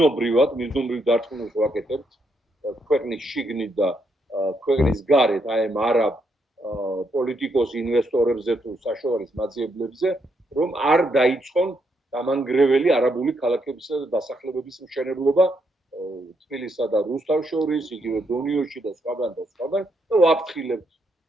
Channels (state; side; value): normal; both; correlation 0.77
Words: მიზნობრივ დარწმუნებას ვაკეთებთ ქვეყნის შიგნით და ქვეყნის გარეთ, აი ამ არაბ პოლიტიკოს ინვესტორებზე თუ საშუალების მაძიებლებზე, რომ არ დაიწყონ დამანგრეველი არაბული ქალაქებისა და დასახლებების მშენებლობა თბილისსა და რუსთავს შორის, იგივე დონიოში და სხვაგან და სხვაგან და ვაფრთხილებთ,